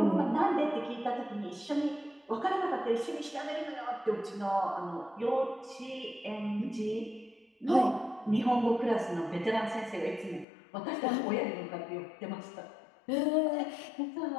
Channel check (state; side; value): drops out; right; at 10.5 s